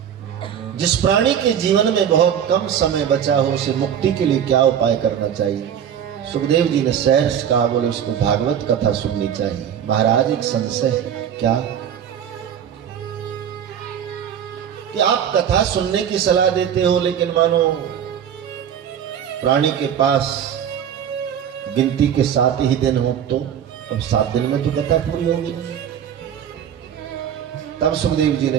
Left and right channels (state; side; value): quieter; left; 9.0 dB